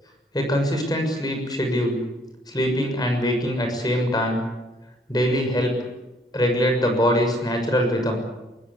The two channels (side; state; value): both; normal; correlation 0.63